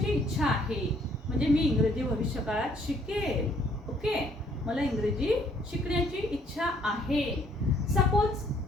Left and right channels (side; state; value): both; normal; correlation 0.64